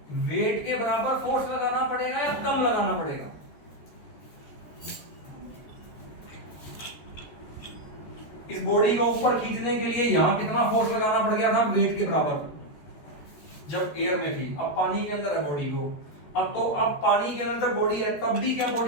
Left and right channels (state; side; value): late; right; 13 ms